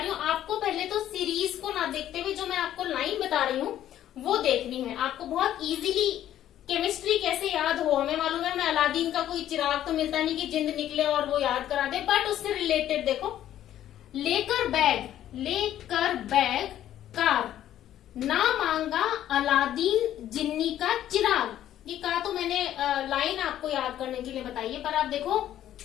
हूँ, आपको पहले तो सीरीज को ना देखते हुए जो मैं आपको लाइन बता रही हूँ वो देखनी है। आपको बहुत इजीली केमिस्ट्री कैसे याद हो, हमें मालूम है, मैं अलादीन का कोई चिराग तो मिलता नहीं कि जिंद निकले और वो याद करा दे, बट उससे रिलेटेड देखो, लेकर बैग कार, ना मांगा अलादीन जिन्नी का चिराग। ये कहा तो मैंने लाइन आपको याद करने के लिए बताइए, पर आप देखो,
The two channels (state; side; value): quieter; right; 11.9 dB